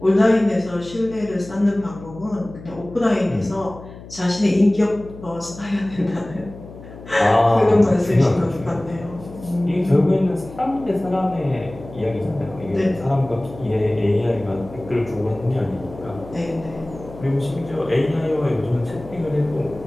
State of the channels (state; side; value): noise; left; hum, 16 dB below the sound